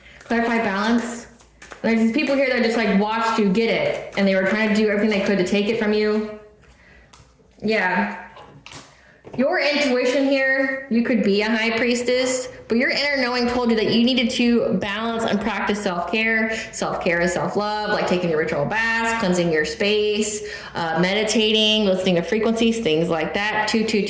Clarify balance. There's these people here that just like watched you get it, and they were trying to do everything they could to take it from you. Yeah. Your intuition here, you could be a high priestess, but your inner knowing told you that you needed to balance and practice self-care. Self-care is self-love, like taking your ritual baths, cleansing your space, meditating, listening to frequencies, things like that.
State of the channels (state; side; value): identical; both; correlation 1.00